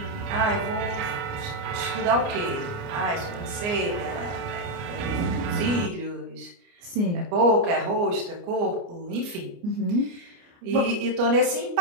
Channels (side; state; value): left; late; 29 ms